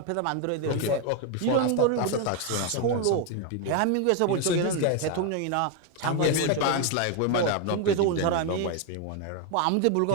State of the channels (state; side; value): different; both; correlation 0.01